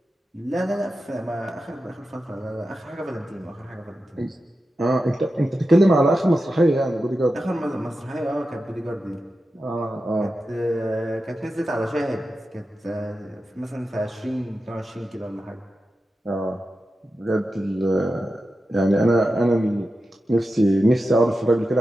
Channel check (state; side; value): normal; both; correlation 0.91